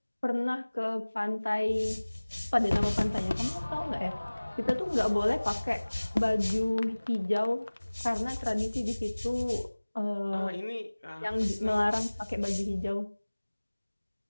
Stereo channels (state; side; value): inverted; both; correlation -1.00